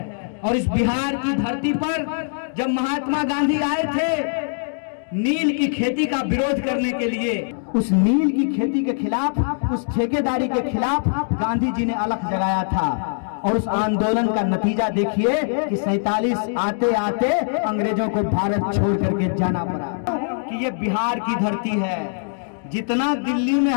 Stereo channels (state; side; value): silent; right; digital silence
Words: और इस बिहार की धरती पर जब महात्मा गांधी आए थे नील की खेती का विरोध करने के लिए, उस नील की खेती के खिलाफ, उस ठेकेदारी के खिलाफ गांधी जी ने अलख जगाया था। और उस आंदोलन का नतीजा देखिए कि 47 आते आते अंग्रेजों को भारत छोड़ करके जाना पड़ा। कि ये बिहार की धरती है, जितना दिल्ली में